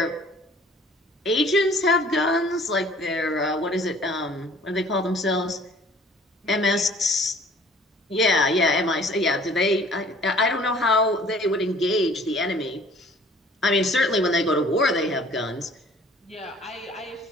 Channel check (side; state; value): both; normal; correlation 0.53